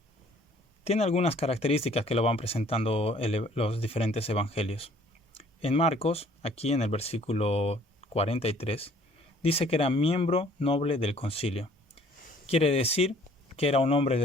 tiene algunas características que lo van presentando los diferentes evangelios. En Marcos, aquí en el versículo 43, dice que era miembro noble del concilio. Quiere decir que era un hombre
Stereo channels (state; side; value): normal; both; correlation 0.57